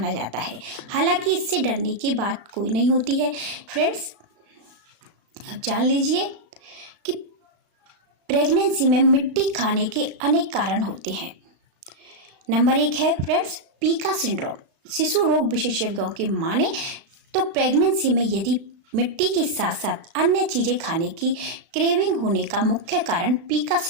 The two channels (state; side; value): late; left; 35 ms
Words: जाता है। हालांकि इससे डरने की बात कोई नहीं होती है। फ्रेंड्स, अब जान लीजिए कि प्रेगनेंसी में मिट्टी खाने के अनेक कारण होते हैं। नंबर 1 है फ्रेंड्स, पीका सिंड्रोम। शिशु रोग विशेषज्ञों की माने तो प्रेगनेंसी में यदि मिट्टी के साथ साथ अन्य चीज़ें खाने की क्रेविंग होने का मुख्य कारण पीका